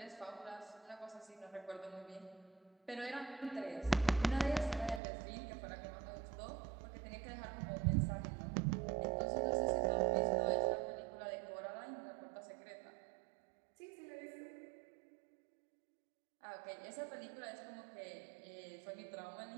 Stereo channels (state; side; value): drops out; left; at 5.0 s